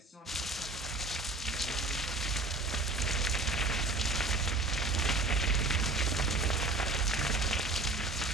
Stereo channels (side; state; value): left; quieter; 3.1 dB